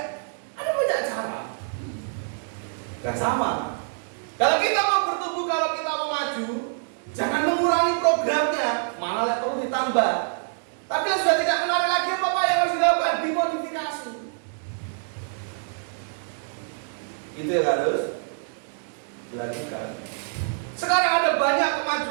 Ada banyak cara. Gak sama. Kalau kita mau bertumbuh, kalau kita mau maju, jangan mengurangi programnya, malah perlu ditambah. Tapi yang sudah tidak menarik lagi, apa yang harus dilakukan? Dimodifikasi. Itu yang harus dilakukan. Sekarang ada banyak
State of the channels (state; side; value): silent; left; digital silence